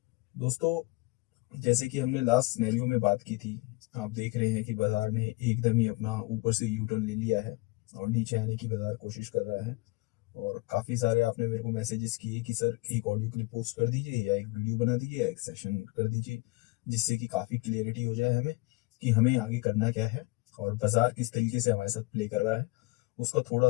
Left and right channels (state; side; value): quieter; right; 23.6 dB